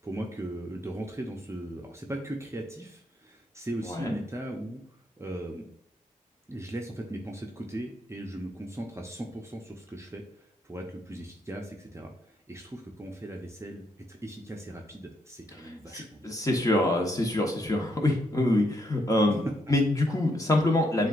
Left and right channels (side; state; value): both; normal; correlation 0.75